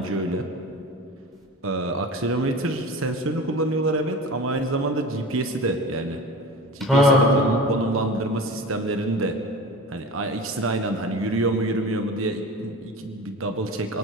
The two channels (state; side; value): normal; both; correlation 0.34